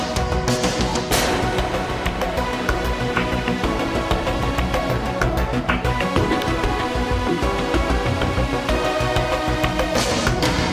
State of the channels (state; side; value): identical; both; correlation 1.00